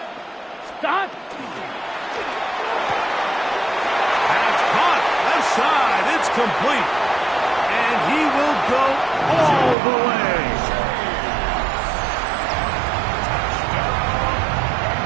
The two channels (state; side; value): drops out; left; at 9.8 s